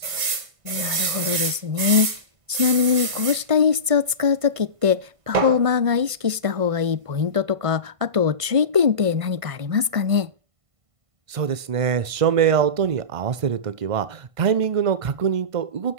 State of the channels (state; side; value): late; left; 1.5 ms